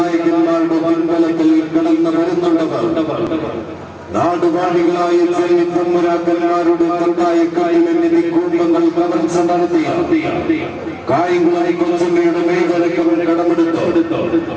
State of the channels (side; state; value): both; identical; correlation 1.00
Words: പിൻബലത്തിൽ കടന്നു വരുന്നുണ്ടവർ നാടുവാഴികളായ ചെന്നിത്തമ്പുരാക്കന്മാരുടെ തട്ടായക്കാരിലെത്തി കുടുംബങ്ങൾ കവർച്ച നടത്തി കായംകുളി കൊച്ചമ്മയുടെ മേഖലയ്ക്ക് കടമെടുത്തു